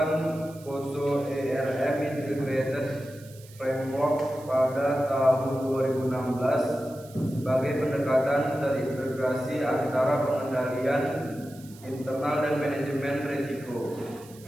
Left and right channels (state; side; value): noise; right; hiss, 22 dB below the sound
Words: COSO ERM Integrated Framework pada tahun 2016 sebagai pendekatan terintegrasi antara pengendalian internal dan manajemen risiko.